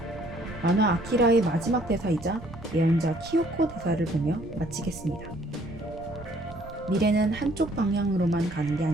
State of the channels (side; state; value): right; noise; rumble, 16 dB below the sound